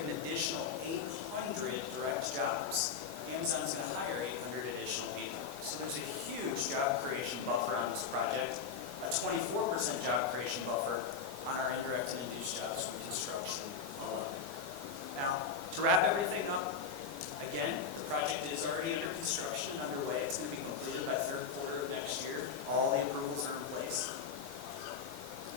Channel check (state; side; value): quieter; right; 5.9 dB